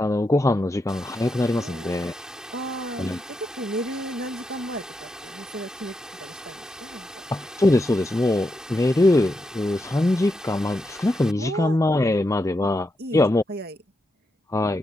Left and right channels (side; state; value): both; normal; correlation 0.85